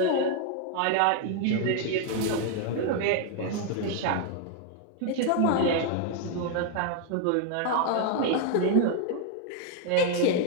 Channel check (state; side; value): different; both; correlation 0.00